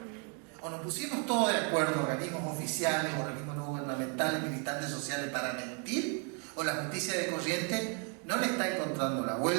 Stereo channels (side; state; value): left; quieter; 38.8 dB